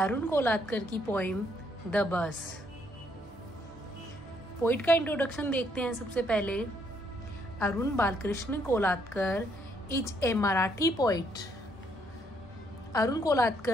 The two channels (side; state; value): both; normal; correlation 0.71